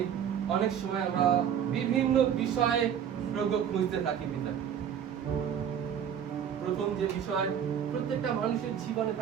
অনেক সময় আমরা বিভিন্ন বিষয়ে প্রভু খুঁজতে থাকি পিতা। প্রথম যে বিষয় প্রত্যেকটা মানুষের জীবনে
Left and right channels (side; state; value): left; quieter; 8.7 dB